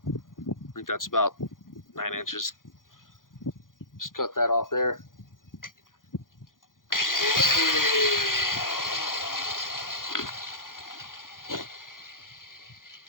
I think that's about 9 inches. Just cut that off there.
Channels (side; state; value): right; late; 0.90 ms